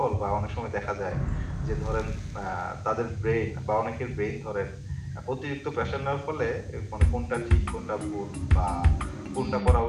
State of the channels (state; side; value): identical; both; correlation 1.00